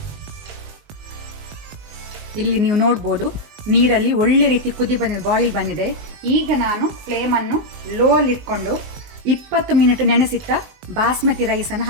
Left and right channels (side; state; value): left; late; 20 ms